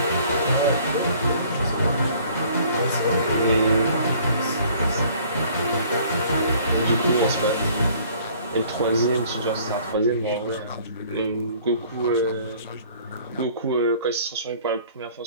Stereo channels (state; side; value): inverted; both; correlation -0.55